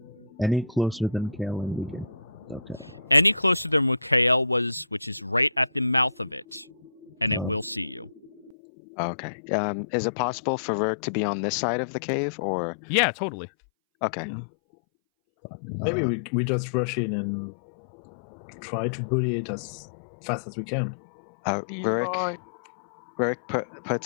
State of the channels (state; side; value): drops out; right; at 8.6 s